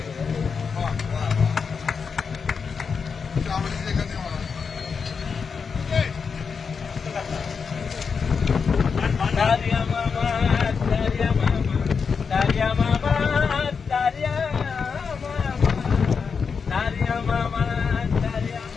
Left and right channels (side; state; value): right; quieter; 5.7 dB